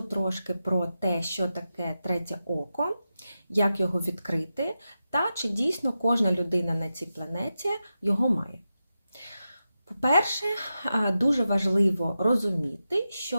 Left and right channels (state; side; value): inverted; both; correlation -0.91